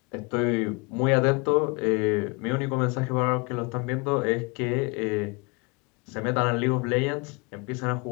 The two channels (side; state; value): right; quieter; 29.4 dB